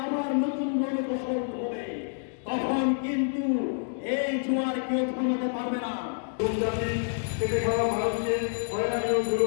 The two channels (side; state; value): right; silent; digital silence